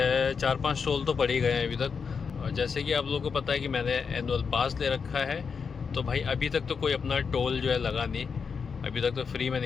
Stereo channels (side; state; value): right; quieter; 5.8 dB